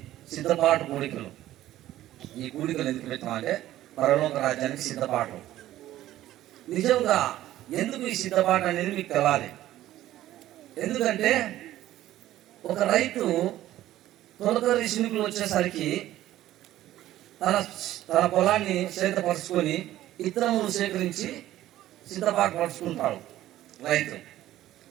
సిద్ధపాటు కూడికలు. ఈ కూడికలు ఎందుకు పెట్టామంటే పరలోక రాజ్యానికి సిద్ధపాటు. నిజంగా ఎందుకు ఈ సిద్ధపాటు అనేది మీకు తెలాలి. ఎందుకంటే ఒక రైతు తొలకరి శినుకులు వచ్చేసరికి తన పొలాన్ని సేతపరుచుకొని ఇత్తనములు సేకరించి సిద్ధపాటు పరుచుకుంటాడు రైతు.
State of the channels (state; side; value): quieter; left; 14.0 dB